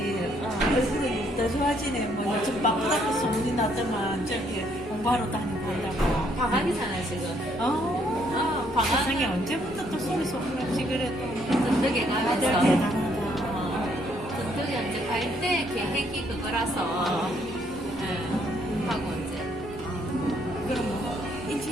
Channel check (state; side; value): normal; both; correlation 0.69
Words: 얼굴이 더 좋아지네. 뭐 요즘 바쁘다고 소문이 나더만 저기 공부하러 다니고 이러고. 방학이잖아요 지금. 방학. 세상에 언제부터 또 소리 소문 없이 그래 또. 든든하게 다들 가면서. 대단하다. 든든히 이제 갈 때 계획이 그거라서 하고 이제. 그럼 뭐